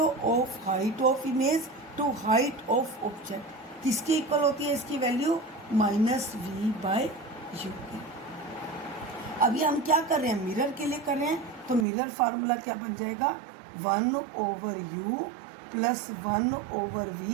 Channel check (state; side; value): drops out; left; at 11.9 s